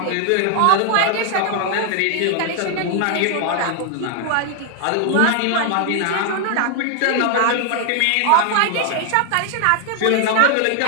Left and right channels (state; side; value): different; both; correlation 0.00